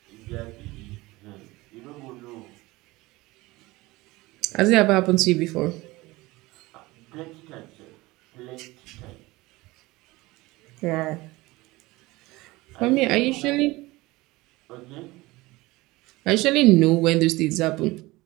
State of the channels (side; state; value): left; quieter; 20.7 dB